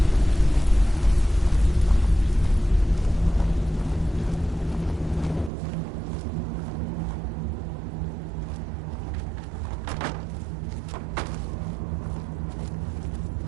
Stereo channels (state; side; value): drops out; left; at 5.5 s